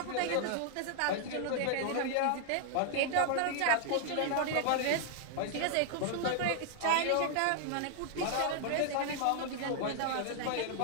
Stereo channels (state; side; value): different; both; correlation 0.00